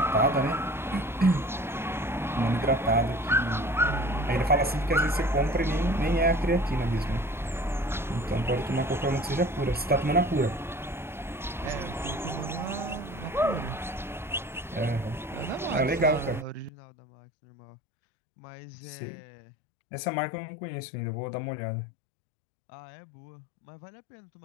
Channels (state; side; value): drops out; right; at 16.7 s